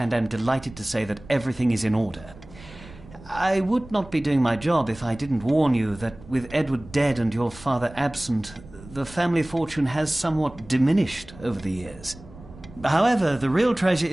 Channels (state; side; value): noise; right; rumble, 19 dB below the sound